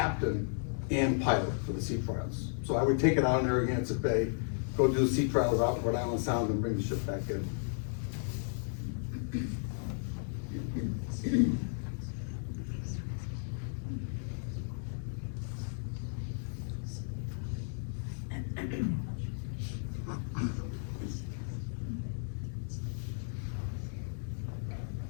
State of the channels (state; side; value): silent; right; digital silence